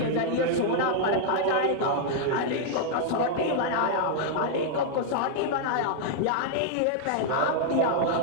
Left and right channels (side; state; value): both; different; correlation -0.01